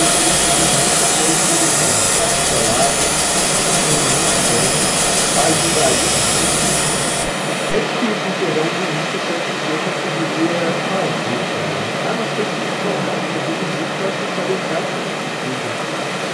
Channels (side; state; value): both; identical; correlation 1.00